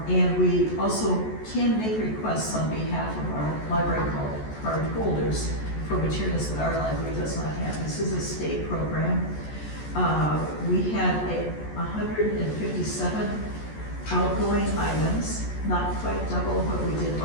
And we also can make requests on behalf of our library card holders for materials that our library does not have. This is a state program. We had 157 outgoing items, not quite double what we did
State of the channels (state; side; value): late; right; 14 ms